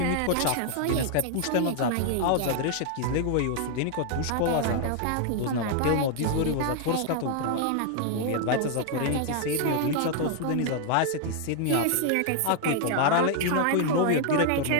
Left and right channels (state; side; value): different; both; correlation 0.00